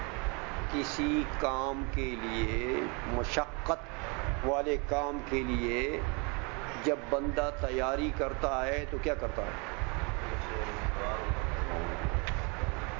کسی کام کے لیے، مشقت والے کام کے لیے جب بندہ تیاری کرتا ہے تو کیا کرتا ہے؟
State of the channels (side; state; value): left; quieter; 31.6 dB